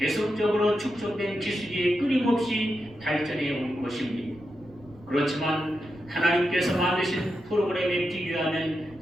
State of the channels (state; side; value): noise; right; rumble, 24 dB below the sound